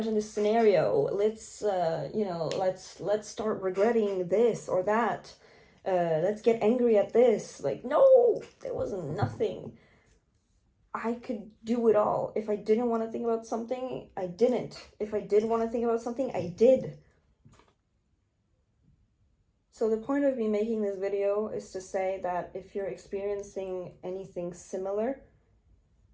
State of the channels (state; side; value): identical; both; correlation 1.00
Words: Let's you know, let's start regretting this or that. Let's get angry at this. Like, no, there was nothing. I could do it all. If I didn't want to think about something, I didn't. If I did want to think about something, I did. So the point of me making this video is to say that if you're experiencing anything similar